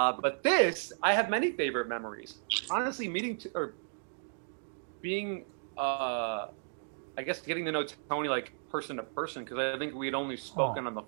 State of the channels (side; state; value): left; silent; digital silence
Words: this, I have many favorite memories. Honestly, being, I guess, getting to know Tony like person to person, because I think we had only spoken on the